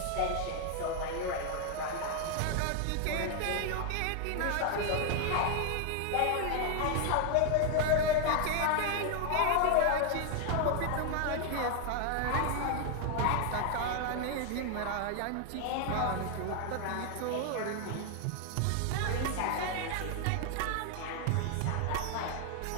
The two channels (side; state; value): both; different; correlation 0.00